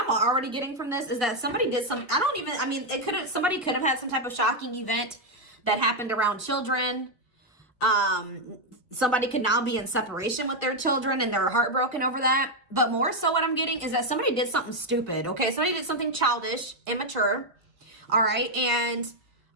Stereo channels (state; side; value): normal; both; correlation 0.02